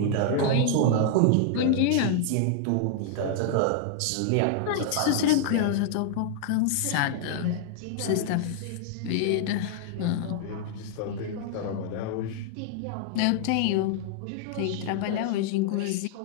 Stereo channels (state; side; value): different; both; correlation -0.01